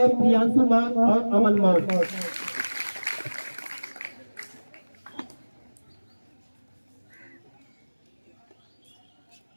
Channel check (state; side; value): inverted; both; correlation -1.00